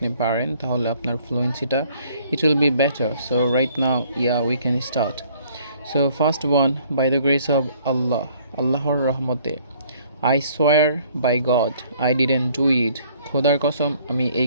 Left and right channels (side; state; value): both; inverted; correlation -0.60